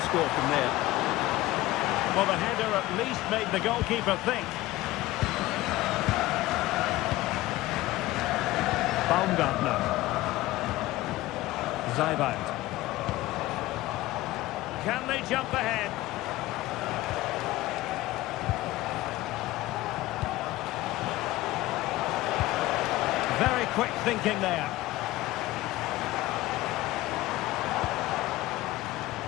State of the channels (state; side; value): quieter; right; 17.4 dB